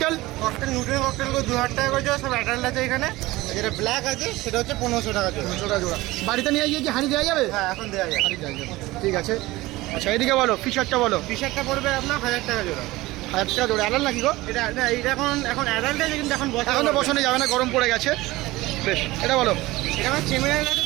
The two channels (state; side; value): quieter; left; 19.2 dB